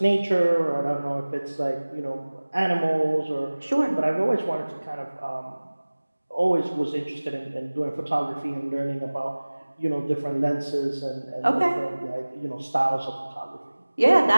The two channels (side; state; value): both; inverted; correlation -1.00